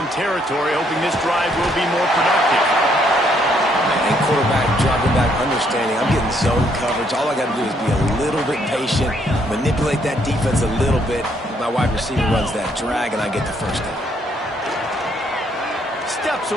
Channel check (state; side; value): normal; both; correlation 0.70